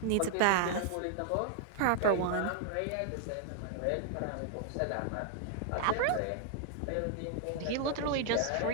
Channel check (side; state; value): both; different; correlation 0.00